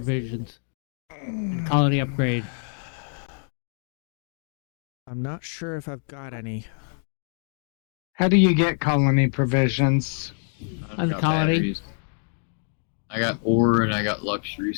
and colony upgrade. I'm not sure if I've got any. How do you get colony provisions? I've On got colony. batteries. I got ore and I got luxury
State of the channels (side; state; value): right; silent; digital silence